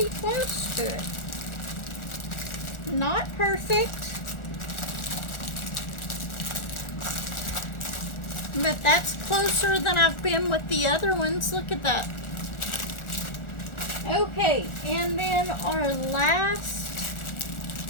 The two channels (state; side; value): late; right; 1.4 ms